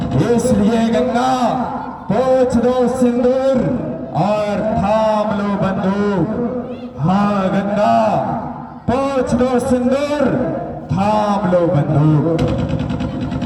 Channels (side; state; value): both; identical; correlation 1.00